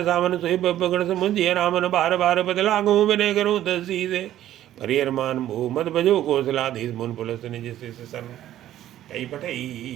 सामन सोई पकड़ समुझिय रामन बार बार बदला गो विनय करो दसी से परिहरमान भो मत भजो कौशलाधीश मुन पुलस निज सन कई पठई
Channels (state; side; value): quieter; left; 12.7 dB